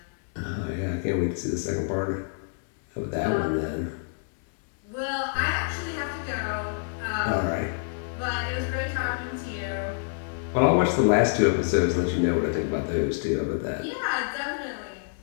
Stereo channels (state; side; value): silent; right; digital silence